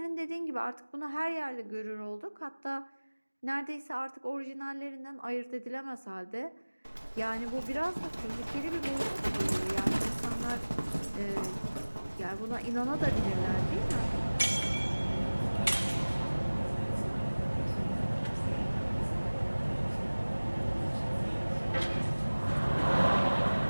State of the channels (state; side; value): inverted; both; correlation -1.00